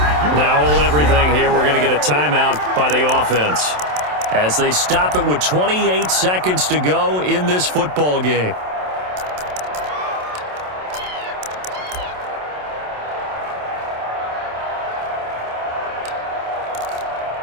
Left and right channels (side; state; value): left; late; 27 ms